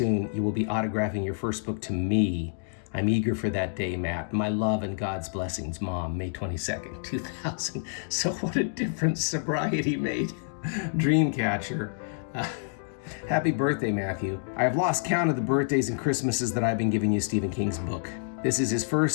you will be autographing your first book to me. I'm eager for that day, Matt. My love and God's blessings, Mom, May 22nd, 2000. So what a difference sobriety made. Dreamcatcher. Happy birthday, Matthew. I have lost count of the birthdays and Christmases that I've been giving you Stephen King's book. This is his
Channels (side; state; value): right; silent; digital silence